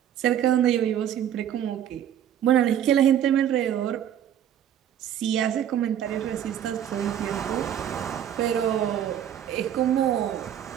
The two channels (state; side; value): quieter; left; 10.2 dB